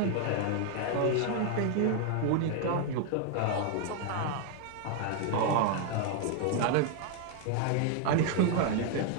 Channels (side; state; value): both; different; correlation 0.00